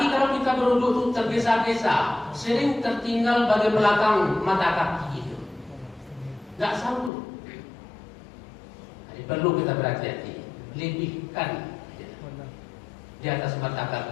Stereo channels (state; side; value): drops out; right; at 7.1 s